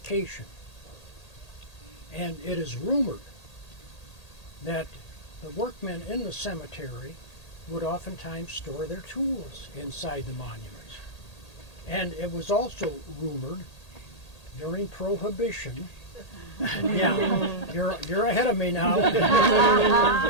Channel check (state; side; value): late; right; 1.8 ms